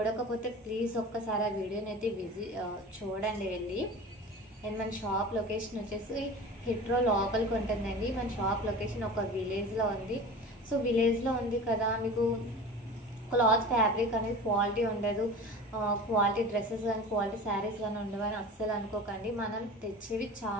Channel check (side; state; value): both; normal; correlation 0.35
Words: ప్లీజ్ ఒక్కసారి ఆ వీడియోని అయితే చూడండి వెళ్ళి. అండ్ మన షాప్ లొకేషన్ వచ్చేసి హిట్రో లోపలికి ఉంటుందండి. మన షాప్ లొకేషన్ ఒక విలేజ్లో ఉంది. సో విలేజ్లో ఉంది కదా, మీకు క్లాత్ ఫ్యాబ్రిక్ అనేది క్వాలిటీ ఉండదు, క్వాలిటీ డ్రెస్సెస్ కానీ క్వాలిటీ శారీస్ కానీ ఉండవని అస్సలు అనుకోకండి. మనం తెచ్చేవి